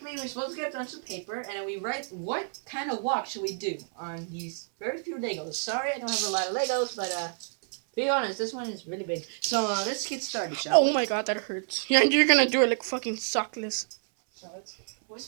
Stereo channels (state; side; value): silent; left; 59 dB below the other